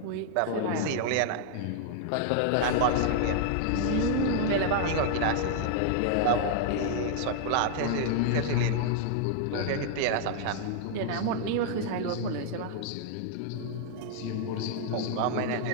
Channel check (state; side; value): different; both; correlation -0.01